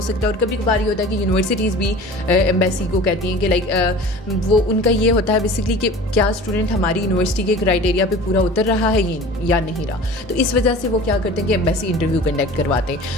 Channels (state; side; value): normal; both; correlation 0.40